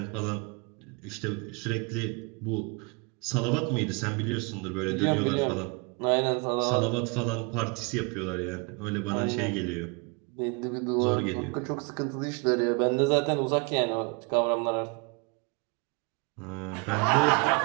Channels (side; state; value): left; quieter; 32.1 dB